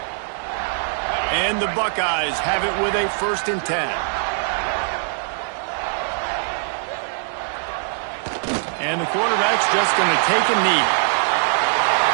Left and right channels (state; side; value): silent; left; digital silence